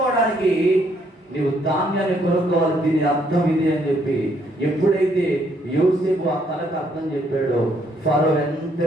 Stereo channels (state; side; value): normal; both; correlation 0.70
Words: నీవు ధాన్యాన్ని కొనుక్కోవాలి. దీని అర్థం ఇది అని చెప్పి ఎప్పుడైతే యోసేపు ఆ కళకు అర్థం చెప్పాడో ఫరో